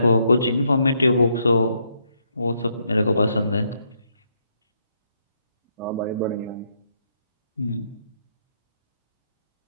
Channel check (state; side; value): inverted; both; correlation -0.75